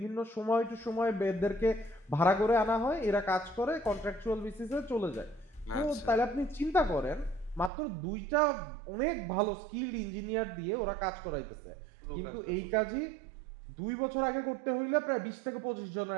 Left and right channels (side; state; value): left; drops out; at 7.7 s